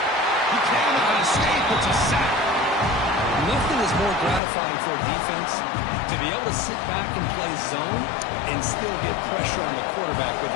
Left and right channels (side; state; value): right; drops out; at 4.4 s